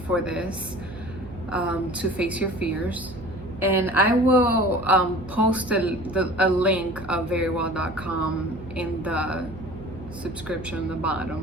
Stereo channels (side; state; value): right; noise; hum, 16 dB below the sound